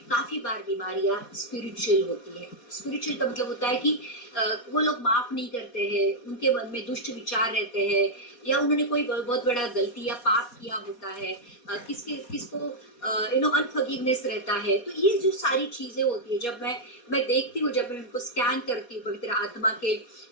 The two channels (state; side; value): late; right; 4.2 ms